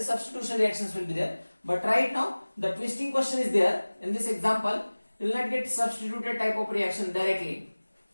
substitution reactions will be there. But right now the twisting question is there. In this example, you will not get substituted type of reaction directly.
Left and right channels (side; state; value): both; inverted; correlation -1.00